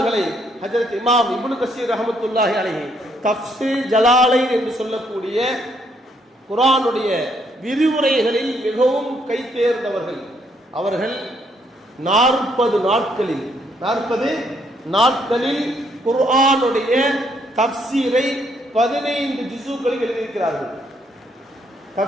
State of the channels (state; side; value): normal; both; correlation 0.71